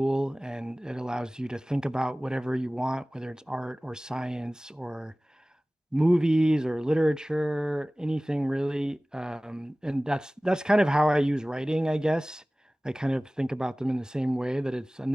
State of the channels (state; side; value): normal; both; correlation 0.98